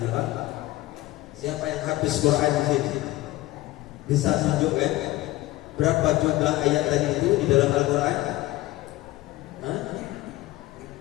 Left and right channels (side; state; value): right; quieter; 17.7 dB